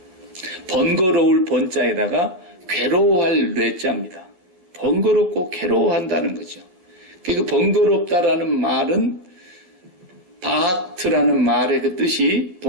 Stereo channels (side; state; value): left; late; 11 ms